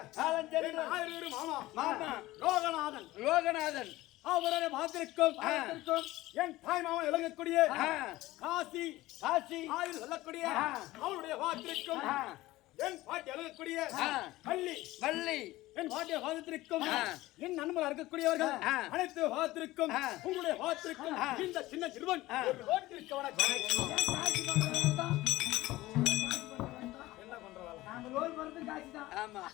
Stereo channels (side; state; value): right; quieter; 17.8 dB